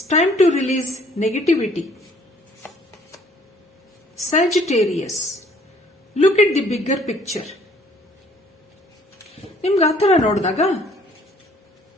time to release negativity. Sagittarius, look at the bigger picture. ನಿಮ್ಗೆ ಆತರ ನೋಡಿದಾಗ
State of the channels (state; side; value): normal; both; correlation 0.59